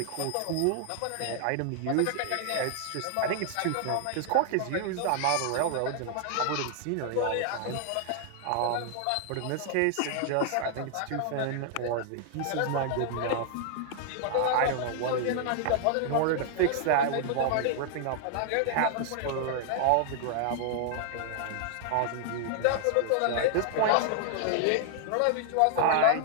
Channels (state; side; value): different; both; correlation 0.00